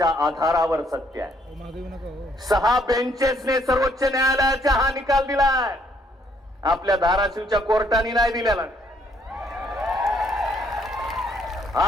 आधारावर सत्य आहे. 6 बेंचेसने सर्वोच्च न्यायालयाचा हा निकाल दिलाय, आपल्या धाराशिवच्या कोर्टाने नाही दिलेला.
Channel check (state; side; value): normal; both; correlation 0.68